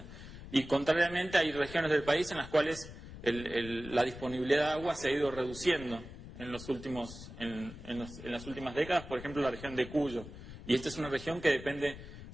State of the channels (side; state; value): left; noise; rumble, 13 dB below the sound